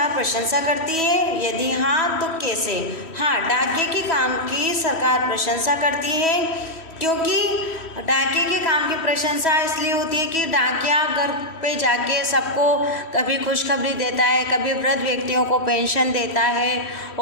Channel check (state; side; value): late; right; 3.1 ms